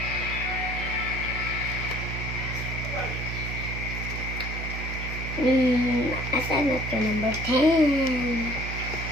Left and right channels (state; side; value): noise; right; hum, 5 dB below the sound